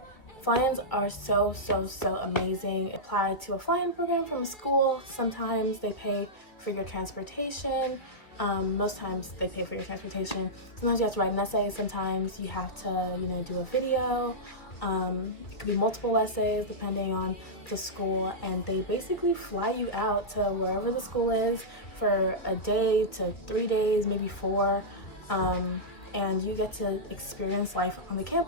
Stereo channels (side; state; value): right; late; 2.4 ms